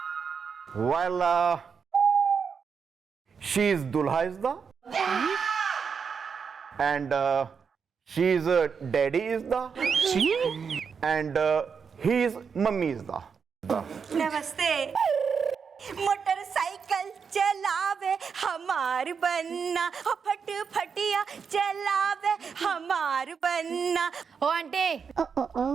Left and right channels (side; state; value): left; quieter; 6.2 dB